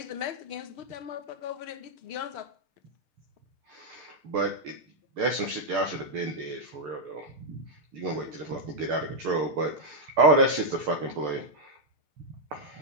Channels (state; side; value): late; left; 6.6 ms